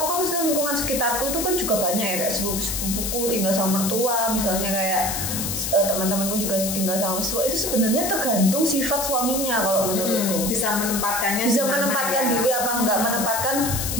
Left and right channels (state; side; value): noise; left; hiss, 2 dB below the sound